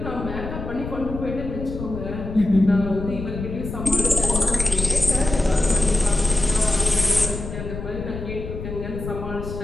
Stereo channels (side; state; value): left; noise; rumble, 8 dB below the sound